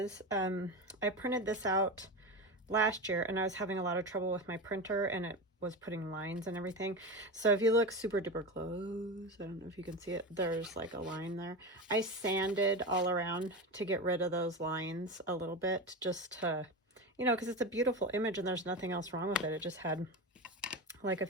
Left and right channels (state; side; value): normal; both; correlation 0.22